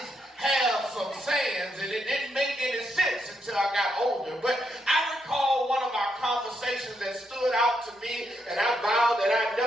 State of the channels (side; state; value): both; normal; correlation 0.79